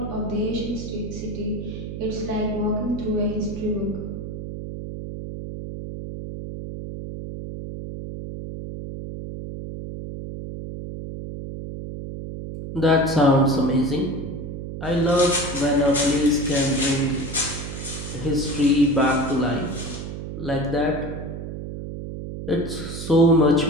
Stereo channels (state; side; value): noise; right; hum, 8 dB below the sound